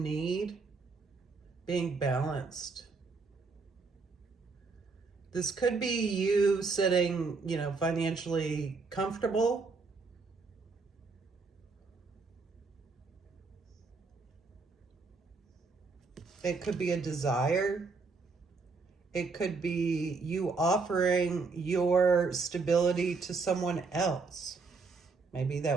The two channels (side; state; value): left; quieter; 4.3 dB